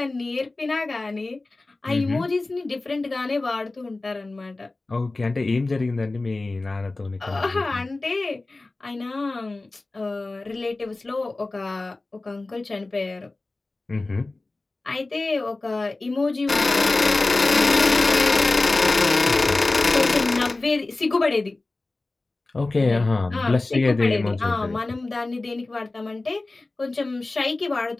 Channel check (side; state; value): right; quieter; 3.2 dB